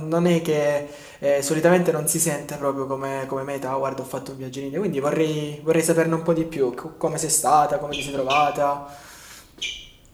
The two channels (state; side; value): identical; both; correlation 1.00